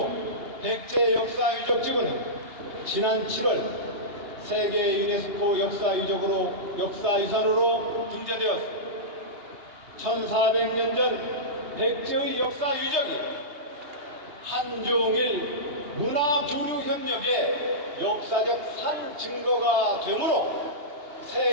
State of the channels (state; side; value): late; left; 2.8 ms